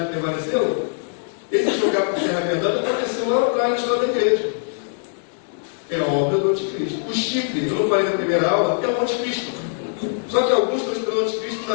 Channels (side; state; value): right; silent; digital silence